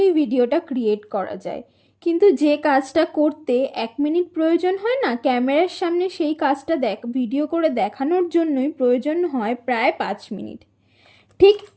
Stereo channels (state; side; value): identical; both; correlation 1.00